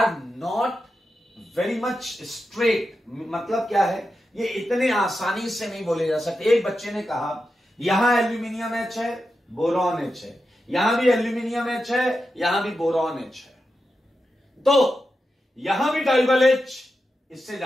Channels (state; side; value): normal; both; correlation 0.89